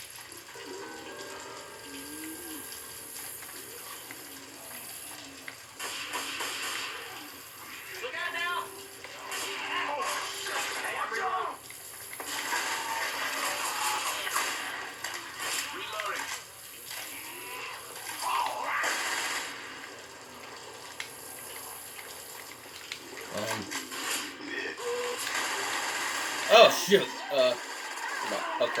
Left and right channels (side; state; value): both; identical; correlation 1.00